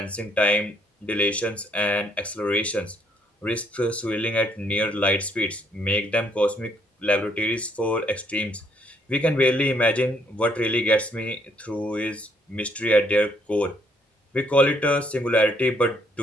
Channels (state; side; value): normal; both; correlation 0.69